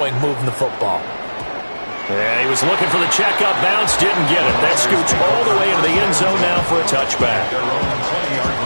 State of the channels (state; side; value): inverted; both; correlation -1.00